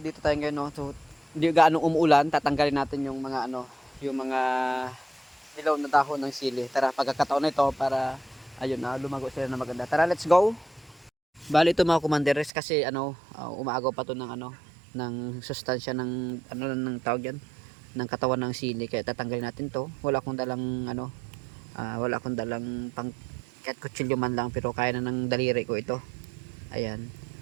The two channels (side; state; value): left; drops out; at 12.5 s